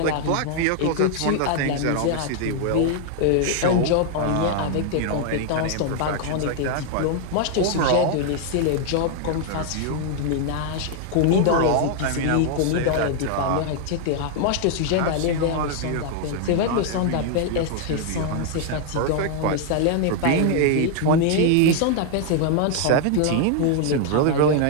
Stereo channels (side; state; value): both; different; correlation 0.00